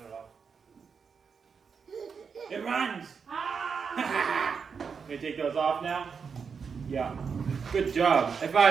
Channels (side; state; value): left; quieter; 6.0 dB